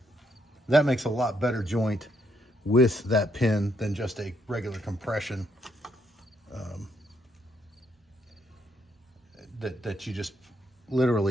that makes a lot better joint with that pin than just a regular compression that you just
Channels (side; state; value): both; normal; correlation 0.75